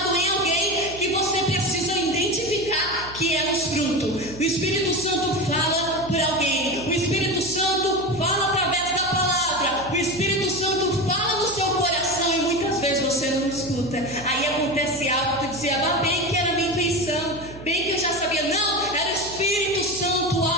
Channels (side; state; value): right; noise; hum, 16 dB below the sound